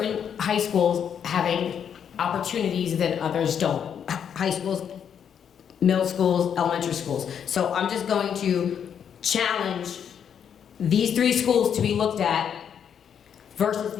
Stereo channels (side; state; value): right; quieter; 8.1 dB